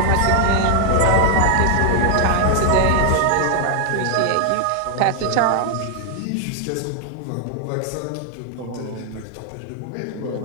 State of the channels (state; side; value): different; both; correlation 0.00